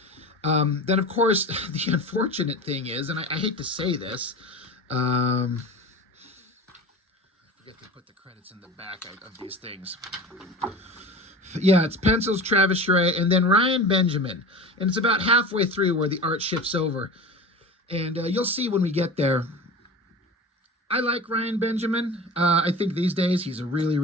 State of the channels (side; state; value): both; normal; correlation 0.34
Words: Then, of course, the unfortunate thing is, and I hate to say this, I forget to put the credits in the back of these things. Yeah, it's pencils, Travis Charest, and then Ryan Benjamin. And it's about halfway through where the art shifts over. And you'll see when we get there. I like Ryan Benjamin. I think these days he's a really,